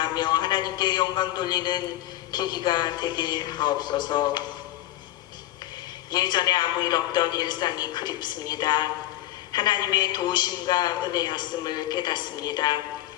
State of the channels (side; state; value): right; quieter; 14.9 dB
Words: 하나님께 영광 돌리는 계기가 되게 하옵소서. 예전에 아무 일 없던 일상이 그립습니다. 하나님의 도우심과 은혜였음을 깨닫습니다.